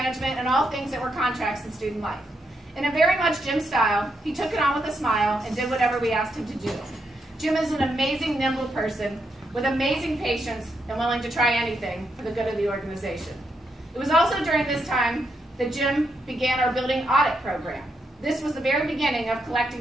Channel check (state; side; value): normal; both; correlation 0.81